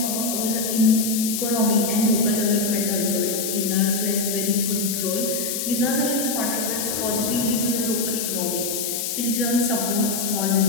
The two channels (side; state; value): left; noise; hiss, 2 dB below the sound